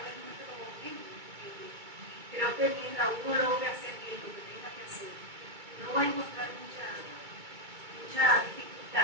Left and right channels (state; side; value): late; left; 2.3 ms